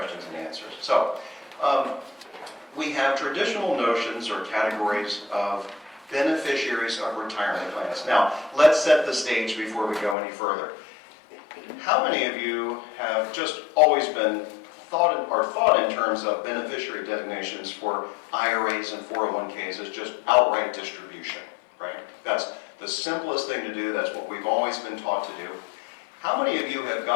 and answers. So we have traditional notions or categories of beneficiaries of retirement plans. Now, let's set the stage before we go any further. How many of you have just always been thought in terms of beneficiary designations for IRAs and 401ks as just outright distribution, right? That's the simplest thing to do. That's what we've always been taught to do. How many of you have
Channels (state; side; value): drops out; right; at 10.2 s